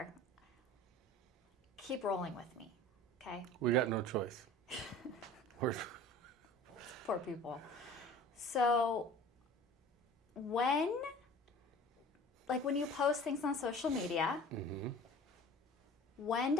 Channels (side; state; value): both; normal; correlation 0.43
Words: Keep rolling with me, okay? We got no choice. Poor people. So when you post things on social media, when